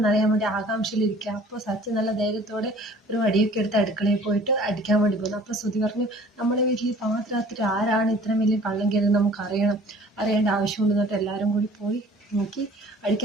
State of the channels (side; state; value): both; normal; correlation 0.50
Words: അറിയാൻ വേണ്ടി ആകാംക്ഷയിലിരിക്കുക. അപ്പോൾ സച്ചി നല്ല ധൈര്യത്തോടെ ഒരു വടിയൊക്കെ എടുത്ത് അടുക്കളയിൽ പോയിട്ട് അടിക്കാൻ വേണ്ടി പോകുന്നു. അപ്പോൾ ശ്രുതി പറഞ്ഞു, നമ്മളെ വീട്ടിൽ പാതിരാത്രി ആരാണ് ഇത്രയും വലിയ കള്ളം കയറി നമുക്ക് അറിയേണ്ട ആവശ്യമുണ്ടെന്ന് പറഞ്ഞിട്ട് എല്ലാവരും കൂടി പോയി നോക്കി